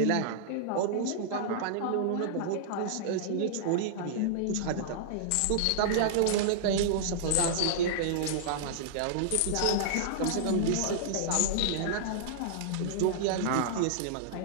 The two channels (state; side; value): different; both; correlation -0.02